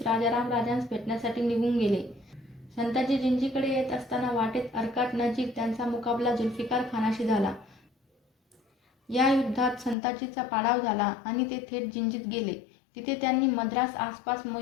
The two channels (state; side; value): drops out; right; at 10.0 s